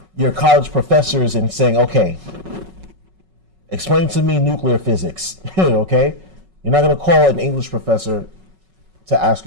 your college professors and saying, okay, explain to me nuclear physics, okay? You're not going to call an English professor to ask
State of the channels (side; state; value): left; late; 5.4 ms